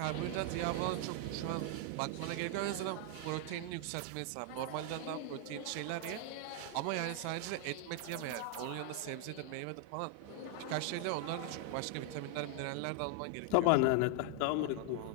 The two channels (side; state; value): both; different; correlation 0.00